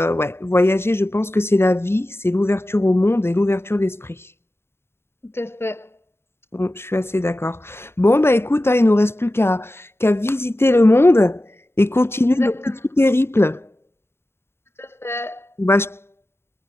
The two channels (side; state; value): right; late; 0.12 ms